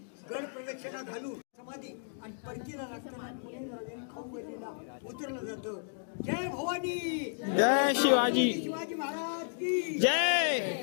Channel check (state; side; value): silent; right; digital silence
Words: गड प्रदक्षिणा घालून समाधी आणि परतीला लागताना खाऊ गेलेला उतरलं जातं. जय भवानी, जय शिवाजी, शिवाजी महाराज की